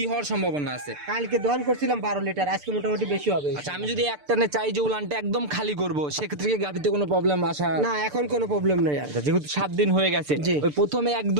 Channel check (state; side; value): late; left; 6.8 ms